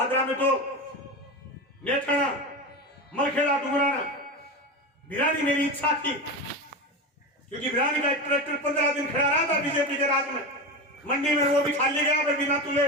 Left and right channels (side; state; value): both; normal; correlation 0.22